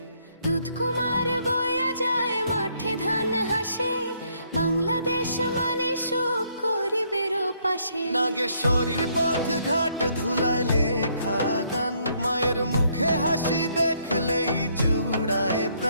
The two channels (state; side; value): inverted; both; correlation -0.69